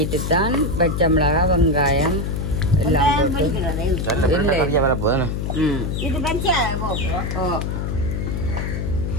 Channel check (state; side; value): noise; left; hum, 2 dB below the sound